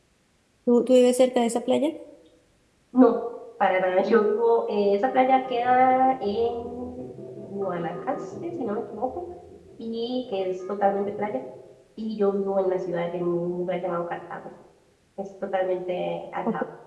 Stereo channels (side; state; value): both; identical; correlation 1.00